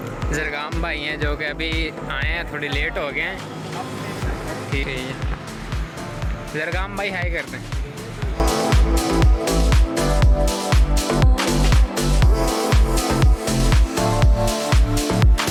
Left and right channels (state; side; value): identical; both; correlation 1.00